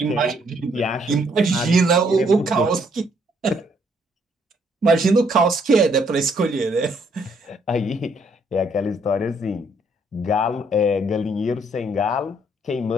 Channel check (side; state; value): both; normal; correlation 0.68